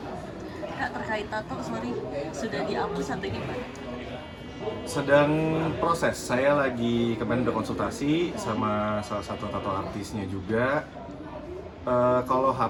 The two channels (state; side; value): identical; both; correlation 1.00